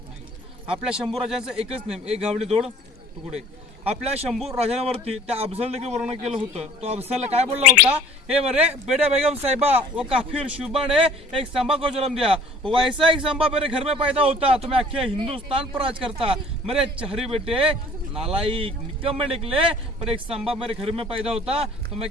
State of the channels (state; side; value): normal; both; correlation 0.51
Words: नाही. आपल्या शंभूराजांचं एकच नेम, एक गावडी दोड तुकडे. आपल्या शंभू राजांवरती त्या अफजल देखील वर्णन केलं होतं. तो अफजल काय बोलला होता, हे मरे बेटा बेगम साहिबा वो काफिर शुबा ने एक संभा को जन्म दिया, वैसा एक संभा मेरे घर में पैदा होता तो मैं अख्खे हिंदुस्तान पर राज करता. मेरे चहरी बेटे नालायक निकम्मे निकले, पर एक संभा मेरे घर में पैदा होता तो मैं